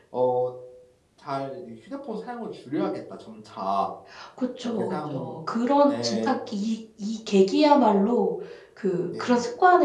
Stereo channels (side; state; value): both; identical; correlation 1.00